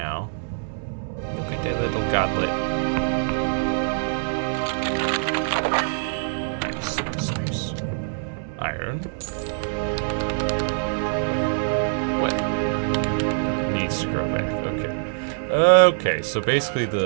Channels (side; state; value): left; silent; 62 dB below the other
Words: Look at that little godlet. Nice. Iron. What? Needs to grow back. Okay. Okay, so basically